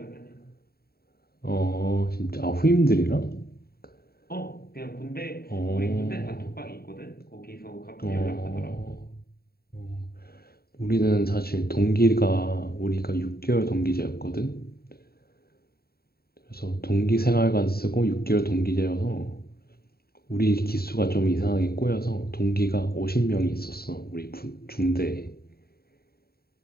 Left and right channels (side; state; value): right; late; 0.45 ms